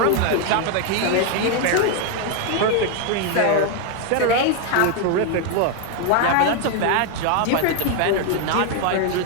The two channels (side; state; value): both; different; correlation 0.01